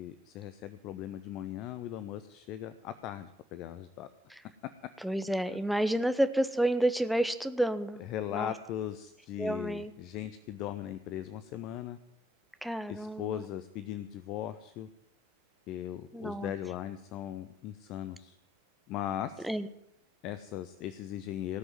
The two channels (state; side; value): normal; both; correlation 0.75